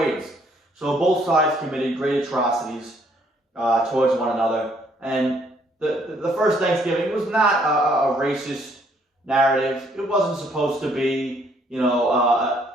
So both sides committed great atrocities towards one another. And the first Thanksgiving was not a racist narrative. It wasn't supposed to be,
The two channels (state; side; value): normal; both; correlation 0.66